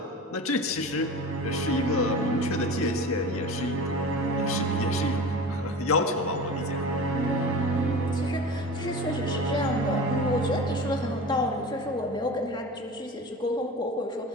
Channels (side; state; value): both; normal; correlation 0.34